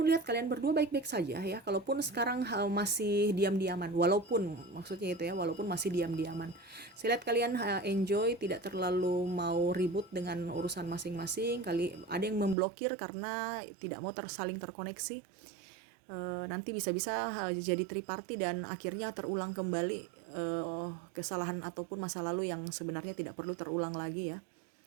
lihat kalian berdua baik-baik saja ya, kalaupun sekarang masih diam-diaman, walaupun maksudnya itu ya, walaupun masih diam-diaman. Saya lihat kalian enjoy, tidak terlalu mau ribut dengan urusan masing-masing. Kali ada yang memblokir karena tidak mau saling terkoneksi. Nanti bisa-bisa jadi triparty dan akhirnya terulang kembali kesalahan ataupun masa lalu yang sebenarnya tidak perlu terulang lagi ya.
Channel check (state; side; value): drops out; left; at 12.6 s